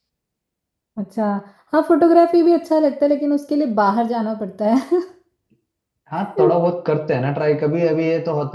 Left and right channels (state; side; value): identical; both; correlation 1.00